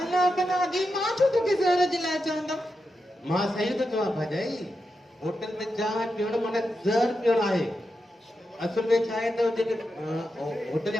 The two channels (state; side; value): normal; both; correlation 0.88